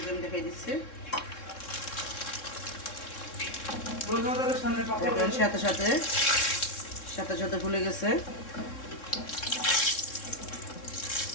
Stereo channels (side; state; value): right; late; 3.7 ms